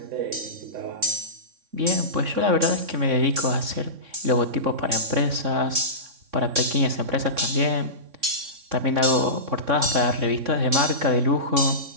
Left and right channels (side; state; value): left; late; 3.6 ms